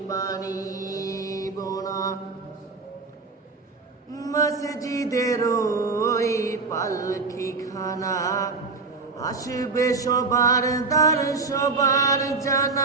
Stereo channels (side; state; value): left; quieter; 4.2 dB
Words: পারিব না। মসজিদের ওই পালকিখানা, আসবে সবার দ্বার সবার